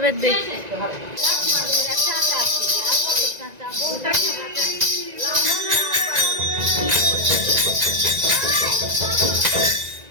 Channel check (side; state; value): left; late; 1.9 ms